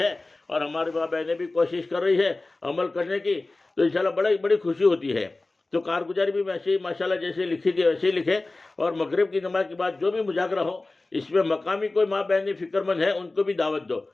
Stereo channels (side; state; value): right; quieter; 3.1 dB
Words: اور ہماری ماں بہنیں بھی کوشش کر رہی ہے عمل کرنے کی. تو انشاءاللہ بڑی خوشی ہوتی ہے. تو کارگزاری بھی ویسے ہی ماشاءاللہ جیسے لکھی تھی ویسے ہی لکھے. اور مغرب کی نماز کے بعد جو بھی مذاکرہ ہو اس میں مقامی کوئی ماں بہنیں فکر مند ہے ان کو بھی دعوت دو